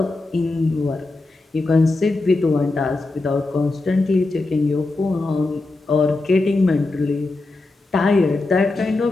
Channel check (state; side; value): quieter; right; 3.2 dB